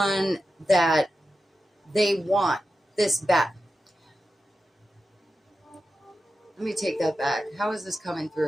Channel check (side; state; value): both; normal; correlation 0.91